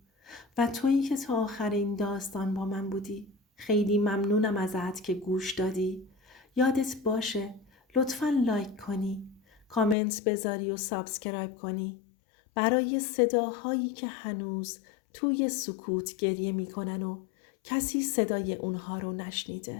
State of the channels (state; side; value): drops out; right; at 10.0 s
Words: و تویی که تا آخر این داستان با من بودی خیلی ممنونم ازت که گوش دادی. یادت باشه لطفاً لایک کنی، کامنت بذاری و سابسکرایب کنی برای صداهایی که هنوز توی سکوت گریه میکنن و کسی صدای اونها رو